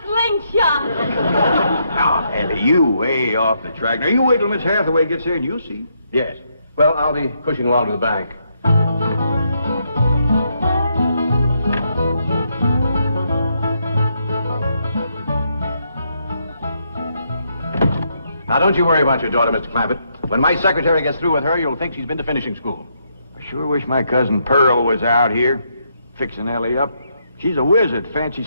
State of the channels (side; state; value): both; inverted; correlation -0.76